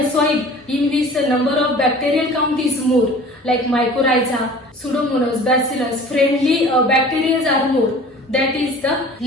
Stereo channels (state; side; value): normal; both; correlation 0.44